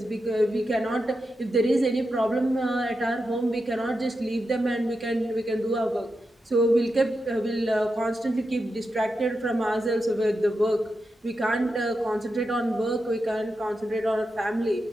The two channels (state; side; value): normal; both; correlation 0.88